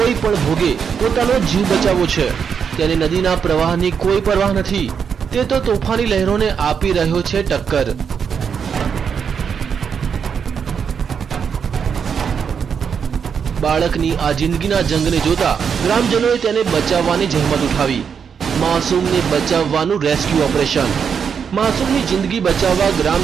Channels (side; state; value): left; quieter; 6.9 dB